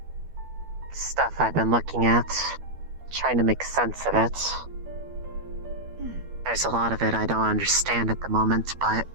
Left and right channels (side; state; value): left; late; 12 ms